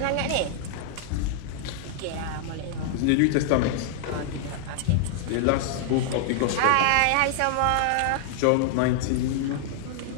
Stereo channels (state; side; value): different; both; correlation 0.00